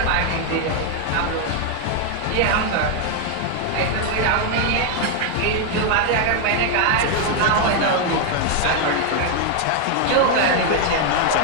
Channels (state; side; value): different; both; correlation 0.00